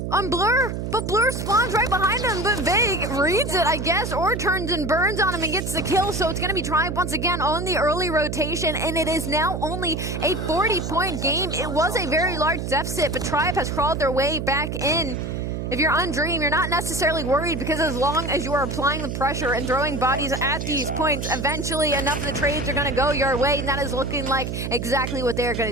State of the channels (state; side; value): noise; right; hum, 4 dB below the sound